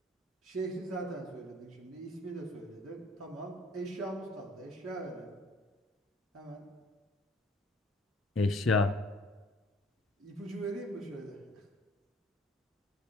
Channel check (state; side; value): normal; both; correlation 0.55